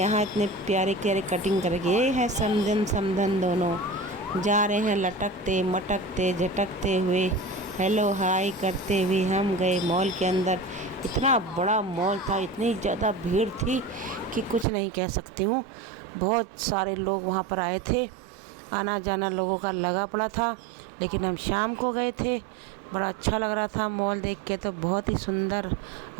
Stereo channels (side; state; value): left; drops out; at 14.7 s